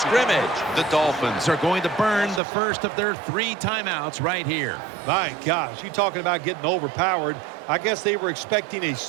The Dolphins Are going to burn the first of their 3 timeouts right here. My gosh, you talking about getting overpowered. I guess they were expecting a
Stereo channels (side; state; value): left; drops out; at 2.4 s